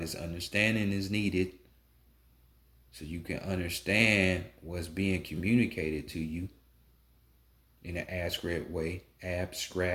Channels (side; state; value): both; identical; correlation 1.00